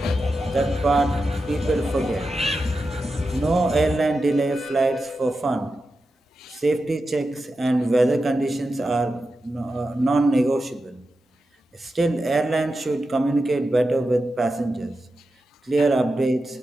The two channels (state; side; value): normal; both; correlation 0.90